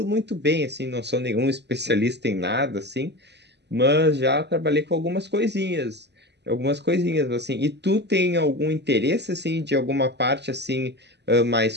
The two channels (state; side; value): late; left; 0.50 ms